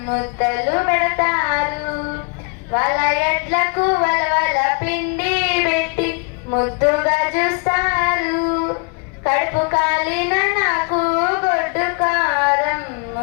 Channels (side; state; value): right; quieter; 33.8 dB